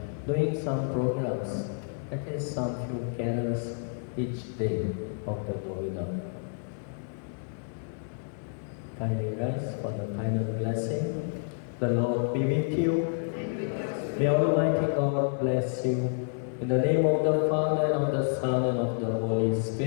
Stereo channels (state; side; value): silent; right; digital silence